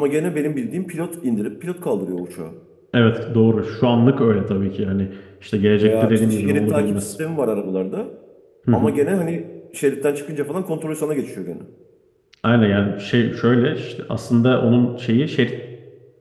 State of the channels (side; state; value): both; identical; correlation 1.00